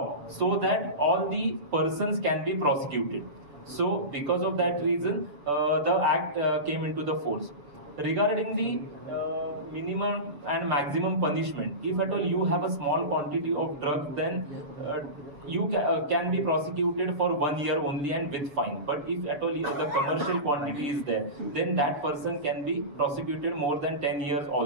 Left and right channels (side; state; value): left; late; 7.1 ms